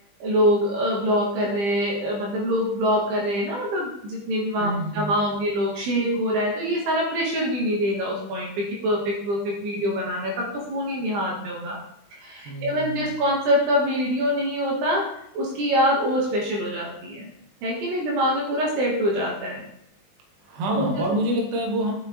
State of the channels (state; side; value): late; left; 20 ms